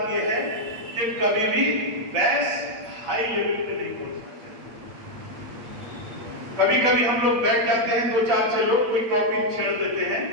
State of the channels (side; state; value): left; late; 8.6 ms